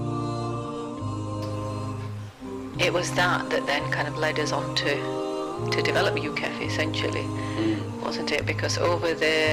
It was that then kind of led us on to develop Ukeff essentially, wasn't it? Because over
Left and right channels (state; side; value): identical; both; correlation 1.00